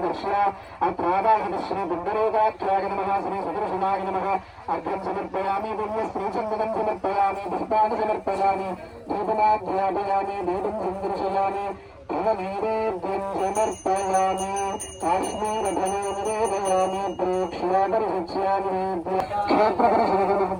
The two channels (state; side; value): identical; both; correlation 1.00